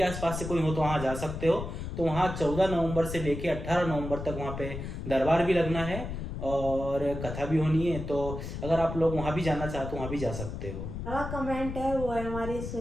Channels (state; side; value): noise; left; rumble, 7 dB below the sound